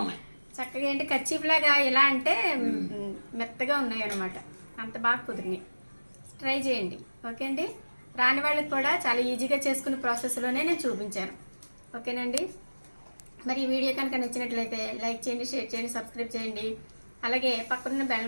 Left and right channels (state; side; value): inverted; both; correlation -1.00